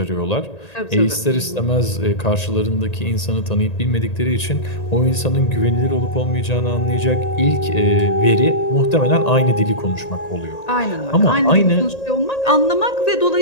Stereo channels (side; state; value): right; late; 1.9 ms